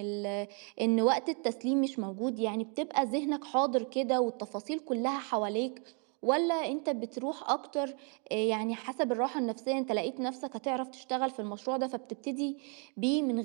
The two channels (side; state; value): left; quieter; 38.2 dB